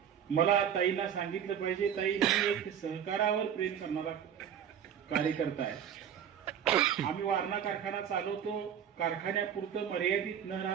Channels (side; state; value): left; quieter; 8.9 dB